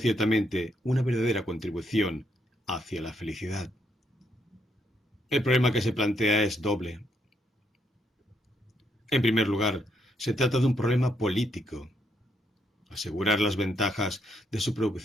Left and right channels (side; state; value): both; normal; correlation 0.76